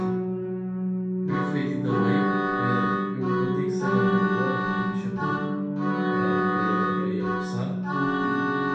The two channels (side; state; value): both; identical; correlation 1.00